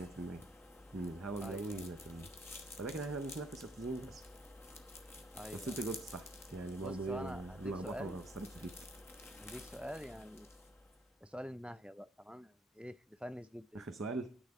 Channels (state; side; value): normal; both; correlation 0.67